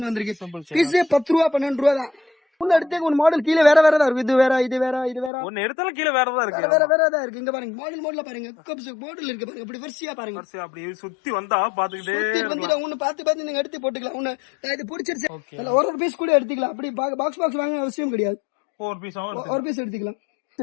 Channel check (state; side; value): drops out; right; at 5.3 s